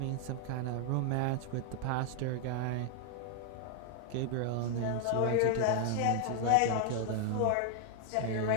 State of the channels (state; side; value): different; both; correlation 0.00